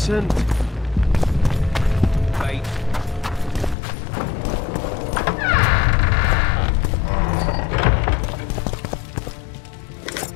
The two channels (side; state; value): right; drops out; at 3.8 s